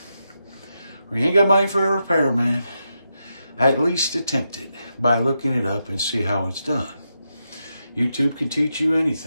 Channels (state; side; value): inverted; both; correlation -0.85